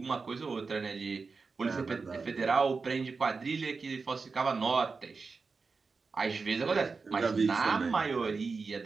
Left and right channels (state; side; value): quieter; left; 4.5 dB